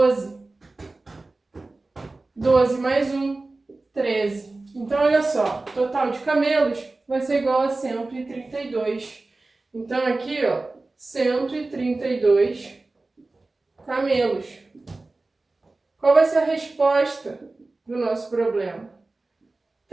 12 mais 1, 13. Então, olha só, o total de camelos vai ser igual a 132. Então, aqui, ó, 132 camelos. Qual vai ser a resposta do nosso problema?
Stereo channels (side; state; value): left; quieter; 3.3 dB